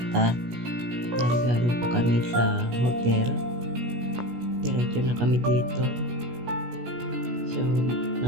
Dahil galing pa kami sa hotel. Diretso na kami dito. So,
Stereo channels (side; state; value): left; late; 17 ms